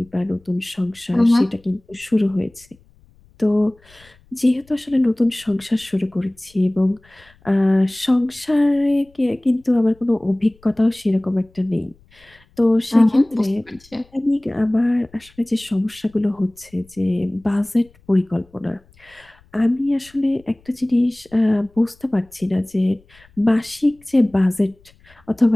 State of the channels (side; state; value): left; noise; rumble, 30 dB below the sound